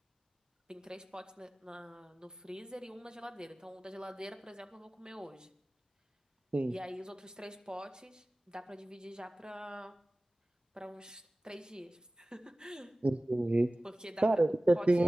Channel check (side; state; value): both; normal; correlation 0.98